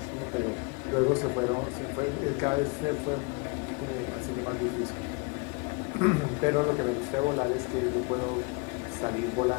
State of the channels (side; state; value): right; quieter; 29.8 dB